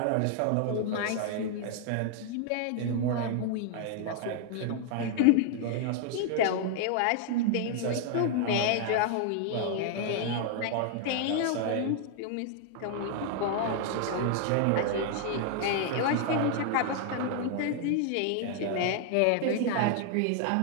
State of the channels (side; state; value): both; different; correlation 0.00